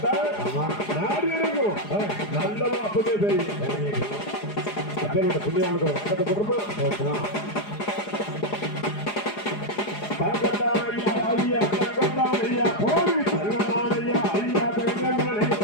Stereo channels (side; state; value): right; late; 4.8 ms